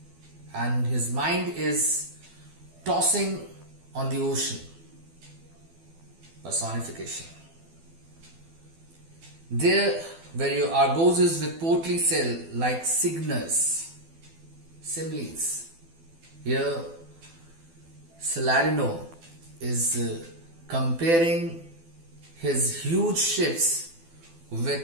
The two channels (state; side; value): late; left; 12 ms